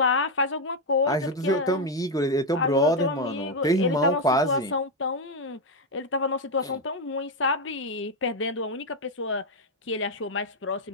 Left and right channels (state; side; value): normal; both; correlation 0.05